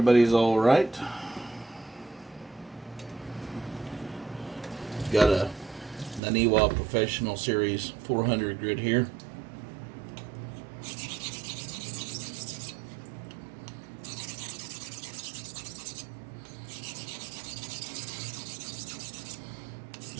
all right. Got a Naniwa Professional Series 400 grit here.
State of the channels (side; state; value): left; drops out; at 6.2 s